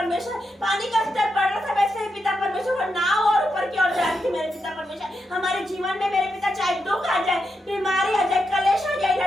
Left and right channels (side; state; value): both; normal; correlation 0.85